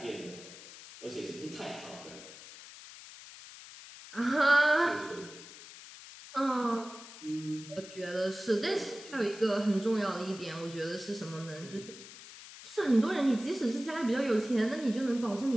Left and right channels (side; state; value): left; noise; hiss, 16 dB below the sound